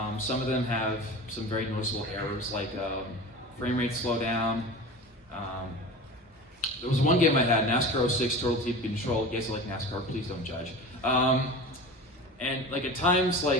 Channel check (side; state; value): both; normal; correlation 0.33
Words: some of them have some very noticeable errors, like frame rate slowdown. There was one game I had, NASCAR 06 Total Team Control. You guys like NASCAR? Please don't judge. And like at times,